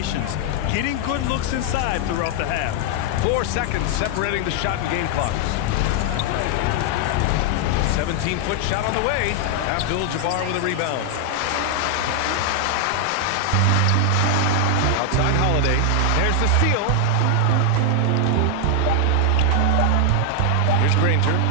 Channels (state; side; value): different; both; correlation 0.00